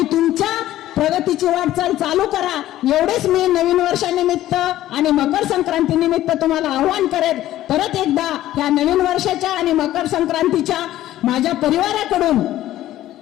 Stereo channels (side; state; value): right; quieter; 14.0 dB